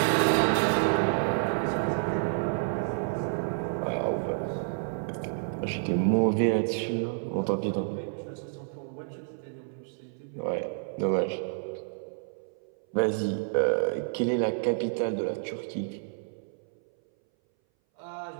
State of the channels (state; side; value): silent; left; 58 dB below the other